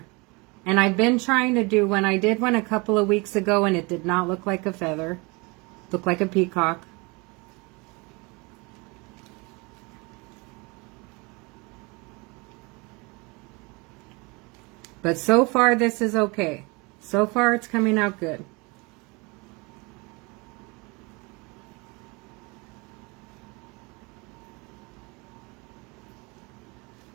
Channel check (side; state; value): left; quieter; 27.6 dB